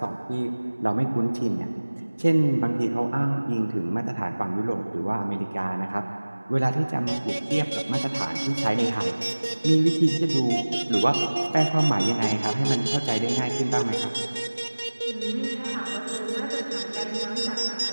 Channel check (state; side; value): inverted; both; correlation -1.00